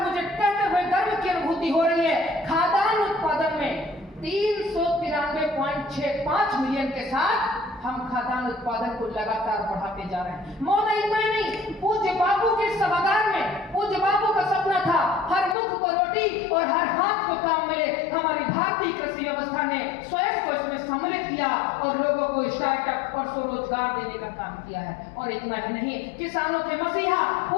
कहते हुए गर्व की अनुभूति हो रही है, खाद्यान्न उत्पादन में 393.65 मिलियन के साथ हम खाद्यान्न उत्पादन को लगातार बढ़ाते जा रहे हैं। महोदय, इतना ही नहीं, पूज्य बापू के सभागार में पूज्य बापू का सपना था हर मुख को रोटी और हर हाथ को काम मिले। हमारी भारतीय कृषि व्यवस्था ने स्वयं को इसमें सम्मिलित किया और लोगों को स्टार्टअप और स्वरोजगार देने का काम किया है। और इतना ही नहीं, किसानों के मसीहा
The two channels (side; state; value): right; drops out; at 15.6 s